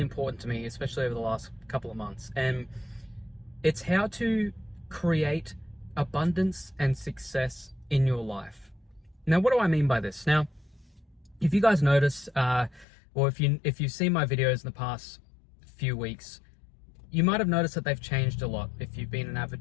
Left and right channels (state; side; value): drops out; right; at 12.9 s